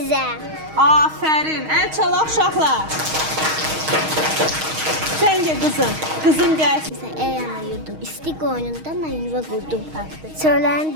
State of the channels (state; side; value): late; left; 6.4 ms